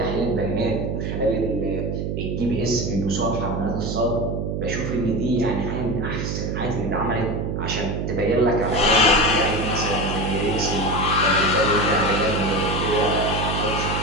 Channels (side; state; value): right; noise; hum, 2 dB below the sound